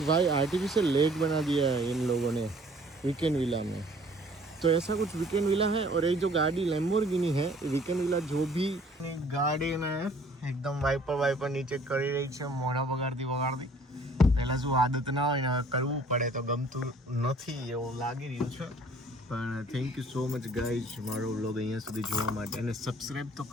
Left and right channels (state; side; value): normal; both; correlation 0.56